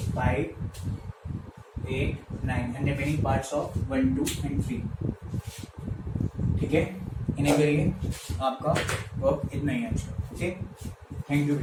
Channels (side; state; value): both; identical; correlation 1.00